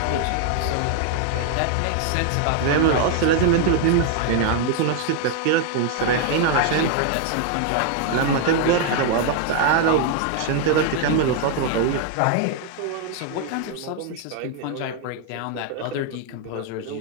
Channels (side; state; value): both; different; correlation 0.00